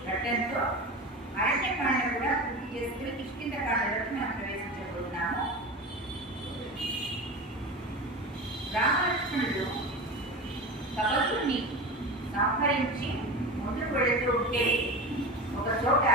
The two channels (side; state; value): both; normal; correlation 0.28